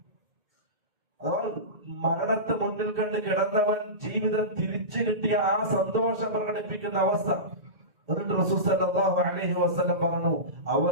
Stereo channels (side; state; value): left; late; 2.1 ms